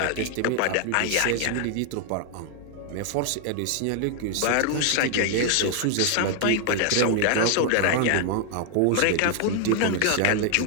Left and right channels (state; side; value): different; both; correlation 0.00